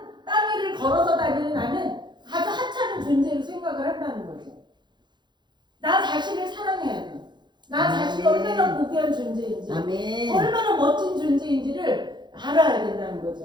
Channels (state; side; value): late; left; 0.21 ms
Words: 땅 위를 걸어서 다니는 나는 아주 하찮은 존재로 생각을 한다는 거죠. 나 자신을 사랑해야 돼. 나 자신이 얼마나 고귀한 존재인지, 얼마나 멋진 존재인지를 알아야 된다는